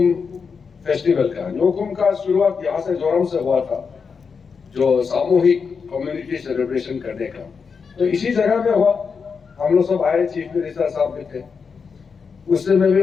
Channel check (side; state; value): right; quieter; 5.6 dB